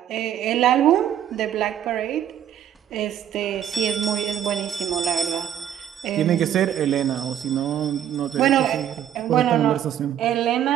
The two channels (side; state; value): left; quieter; 10.3 dB